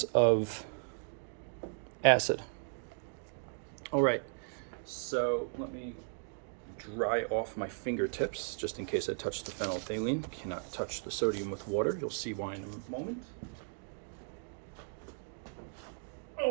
of acid. All right, so let me dry off my fingertips just in case I touch the phenolphthalein. You cannot touch the sodium with water. You'll see why in a moment.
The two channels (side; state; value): left; silent; 54 dB below the other